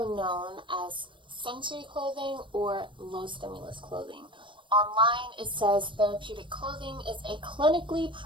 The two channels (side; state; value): left; late; 0.24 ms